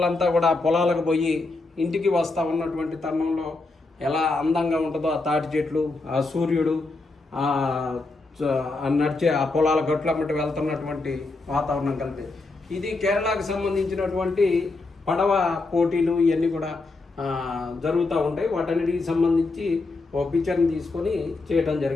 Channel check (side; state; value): right; quieter; 3.4 dB